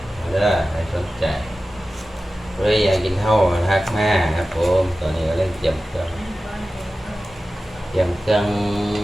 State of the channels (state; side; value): normal; both; correlation 0.95